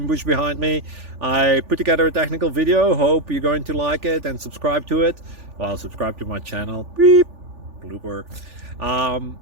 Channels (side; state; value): left; late; 3.4 ms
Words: bush behind me. I put together a technical video. Hope you're going to like it and subscribe to it. Well, subscribe to my channel. Beep. Blooper.